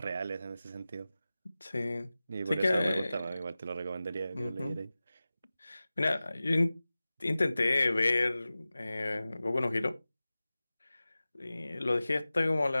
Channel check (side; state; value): both; inverted; correlation -0.96